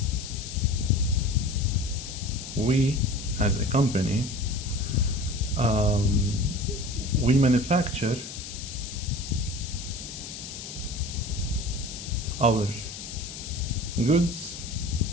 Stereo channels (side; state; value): left; noise; hiss, 10 dB below the sound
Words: we as a company we manufacture our goods